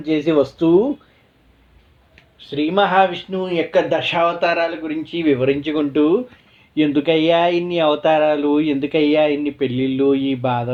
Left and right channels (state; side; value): identical; both; correlation 1.00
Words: చేసి వస్తూ శ్రీ మహావిష్ణువు యొక్క దశావతారాల గురించి వివరించుకుంటూ, ఎందుకయ్యా ఇన్ని అవతారాలు, ఎందుకయ్యా ఇన్ని పెళ్ళిళ్ళు, ఈ